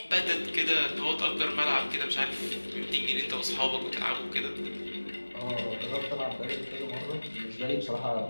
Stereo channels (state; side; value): inverted; both; correlation -1.00